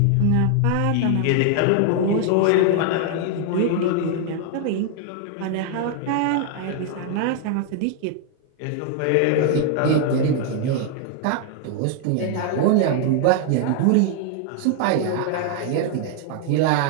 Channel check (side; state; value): both; different; correlation 0.00